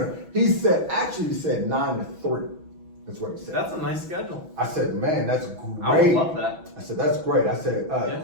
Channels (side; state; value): left; late; 6.1 ms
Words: He said 9 to 3. That's what he said. That's a nice schedule. I said, man, that's great. I would love that. I said, that's great. I said,